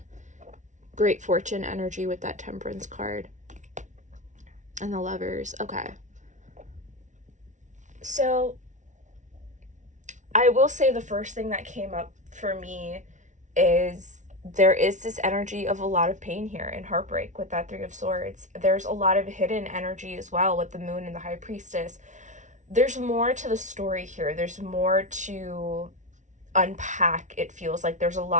great fortune energy with that Temperance card. And the Lovers. Okay. So I will say the first thing that came up for me is there is this energy of a lot of pain here and heartbreak with that 3 of Swords. There's a lot of hidden energy as well with the Moon and the High Priestess. There's more to the story here. There's more to unpack. It feels like there's a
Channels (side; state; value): left; late; 0.36 ms